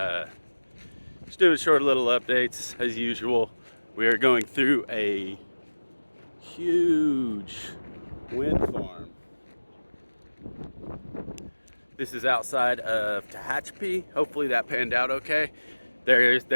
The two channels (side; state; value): both; inverted; correlation -1.00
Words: Just doing short little updates as usual. We are going through a huge wind farm. This is outside of Tehachapi. Hopefully that panned out okay.